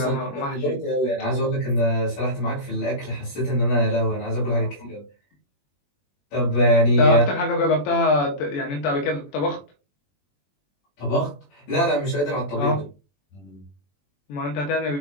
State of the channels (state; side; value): late; right; 21 ms